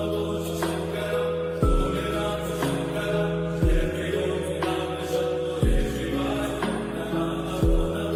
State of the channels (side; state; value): both; identical; correlation 1.00